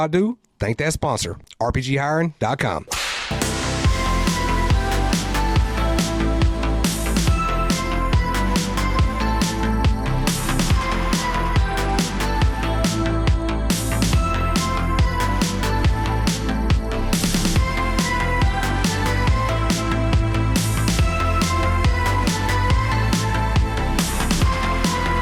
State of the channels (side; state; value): both; identical; correlation 1.00